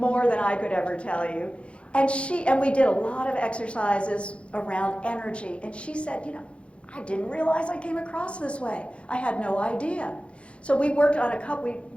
than I could ever tell you. And we did a lot of exercises around energy. And she said, you know, I didn't realize I came across this way. I had no idea. So we worked a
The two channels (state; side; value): late; right; 0.060 ms